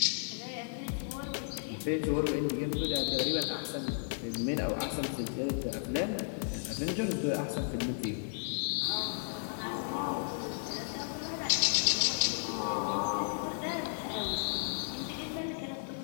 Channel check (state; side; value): silent; right; digital silence